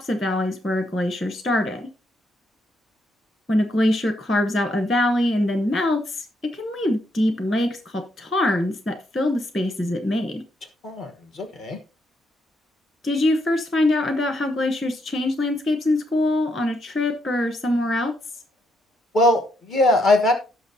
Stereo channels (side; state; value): both; normal; correlation 0.77